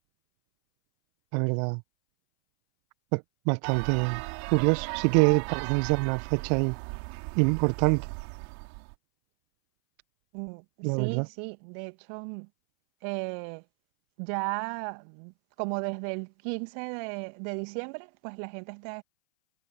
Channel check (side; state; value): left; silent; 59 dB below the other